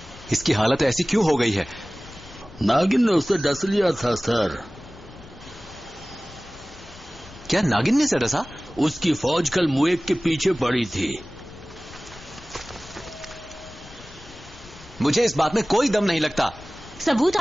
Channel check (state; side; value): noise; left; rumble, 20 dB below the sound